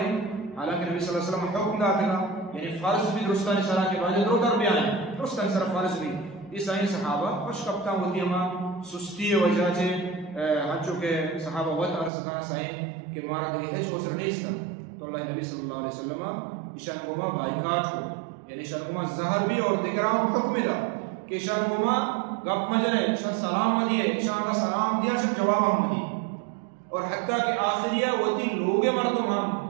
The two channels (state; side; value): drops out; left; at 12.1 s